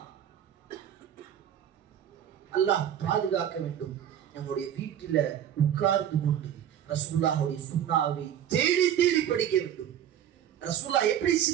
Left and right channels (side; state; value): left; quieter; 10.1 dB